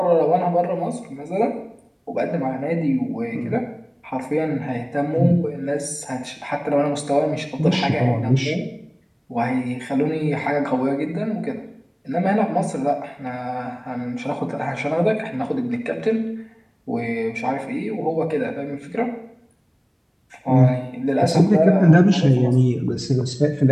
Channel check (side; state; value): both; identical; correlation 1.00